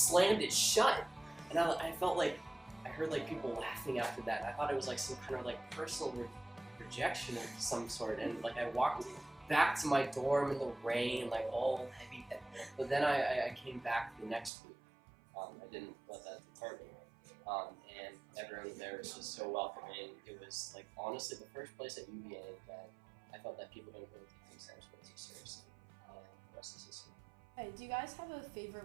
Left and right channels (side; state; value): left; drops out; at 14.5 s